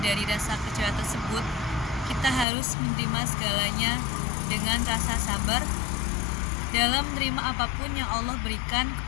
dari rasa kecewa tersebut, kita harus menerima segalanya dengan rasa sabar dalam menerima apapun yang Allah berikan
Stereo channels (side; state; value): right; drops out; at 2.5 s